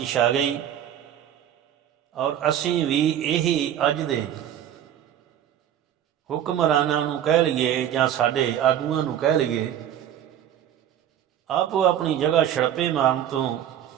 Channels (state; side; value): quieter; left; 10.6 dB